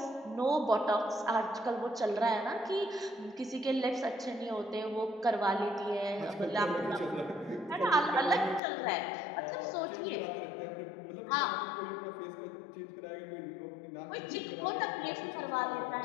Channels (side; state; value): right; drops out; at 8.6 s